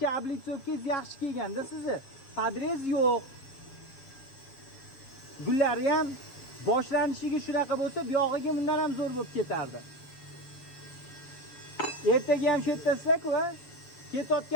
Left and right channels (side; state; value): right; late; 7.4 ms